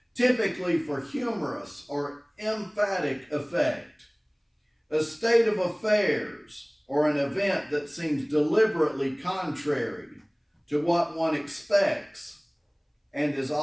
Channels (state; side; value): identical; both; correlation 1.00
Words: typically for humorous or emphatic effect. A state of affairs or an event that seems deliberately contrary to what one expects and is